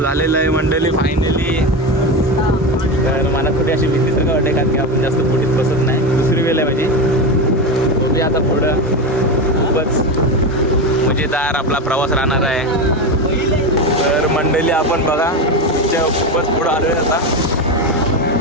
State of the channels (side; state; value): both; normal; correlation 0.18